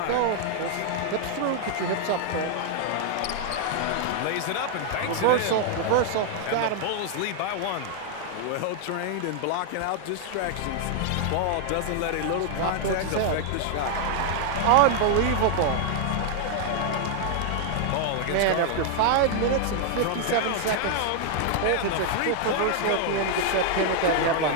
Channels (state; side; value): different; both; correlation 0.00